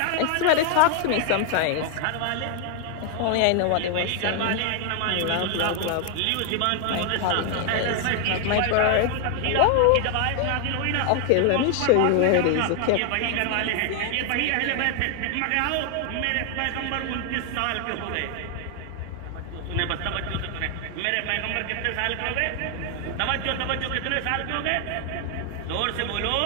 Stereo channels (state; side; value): different; both; correlation 0.00